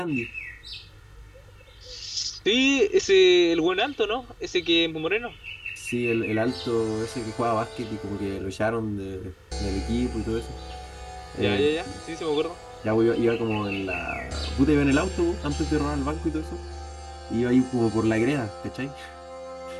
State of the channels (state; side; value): identical; both; correlation 1.00